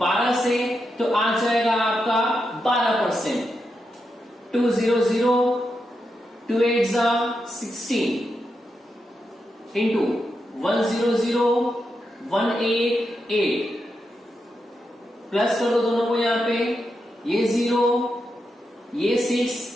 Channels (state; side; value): normal; both; correlation 0.86